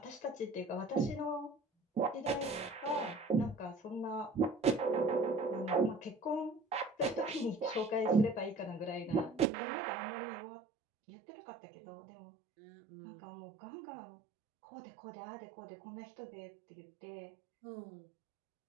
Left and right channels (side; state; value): left; drops out; at 9.5 s